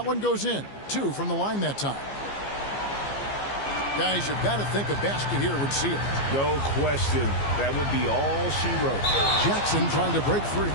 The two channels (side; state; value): right; late; 15 ms